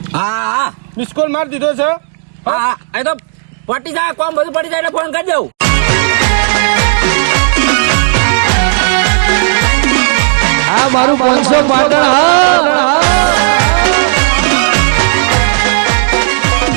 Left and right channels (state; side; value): silent; left; digital silence